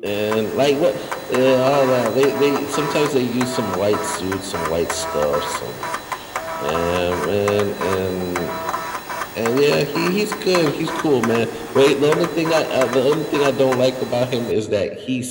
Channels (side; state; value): both; identical; correlation 1.00